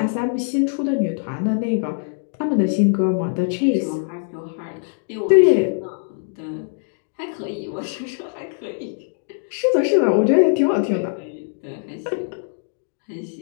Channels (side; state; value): right; silent; 64 dB below the other